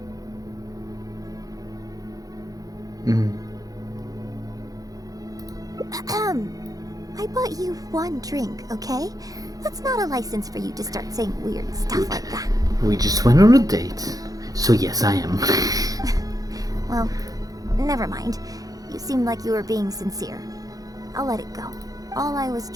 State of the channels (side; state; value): left; late; 0.17 ms